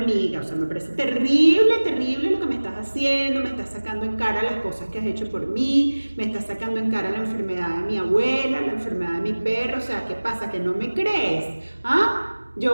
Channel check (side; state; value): both; inverted; correlation -1.00